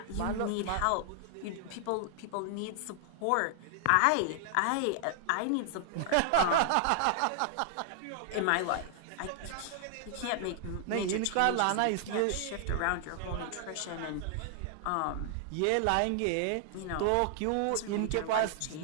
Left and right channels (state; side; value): different; both; correlation 0.00